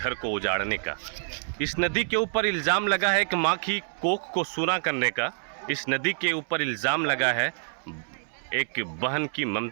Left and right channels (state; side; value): silent; left; 60 dB below the other